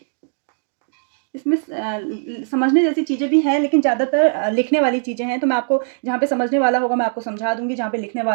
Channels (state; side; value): silent; left; digital silence